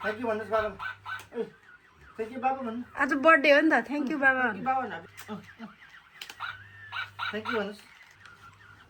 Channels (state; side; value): identical; both; correlation 1.00